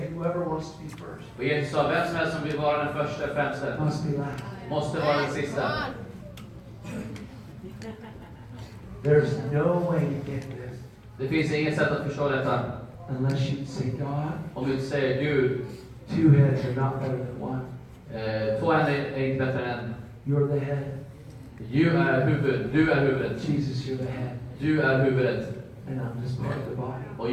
whoever wants to be first Och Jesus sa, vem som helst som vill vara den första främste must be last. måste vara den sista. There's no way to get this Det finns inget sätt att förstå detta. unless you say, God, Om du säger Gud, two heads are not better than one. två händer är inte bättre än en. You're the head. Du är huvudet. Jesus, you're the head. Du är huvudet. And I'm just part of the body. Och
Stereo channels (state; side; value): identical; both; correlation 1.00